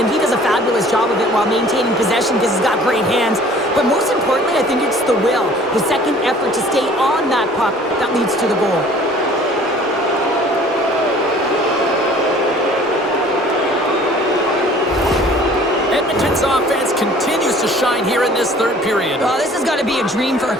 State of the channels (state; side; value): normal; both; correlation 0.51